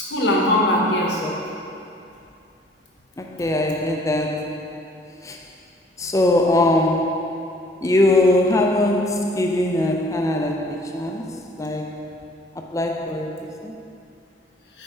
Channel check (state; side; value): normal; both; correlation 0.55